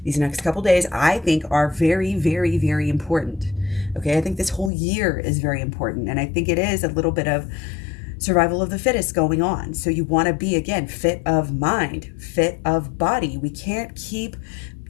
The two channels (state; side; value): drops out; right; at 4.7 s